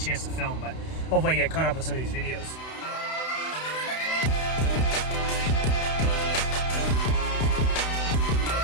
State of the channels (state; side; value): late; right; 31 ms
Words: to film, but hopefully I get caught up on some of these videos.